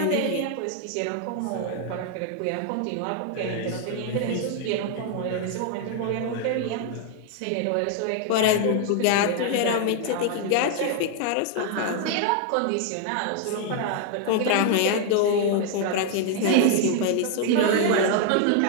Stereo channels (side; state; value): both; different; correlation 0.00